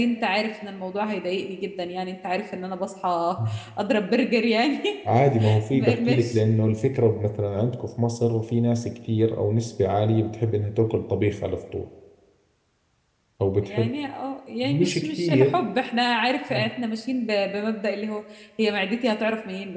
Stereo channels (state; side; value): identical; both; correlation 1.00